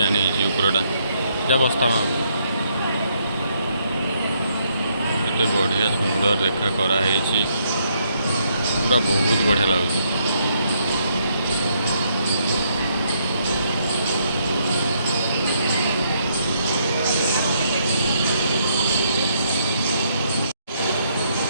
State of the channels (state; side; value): inverted; both; correlation -0.73